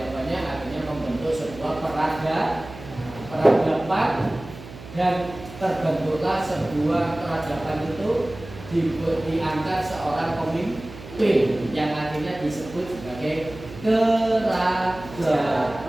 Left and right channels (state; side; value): noise; right; hum, 15 dB below the sound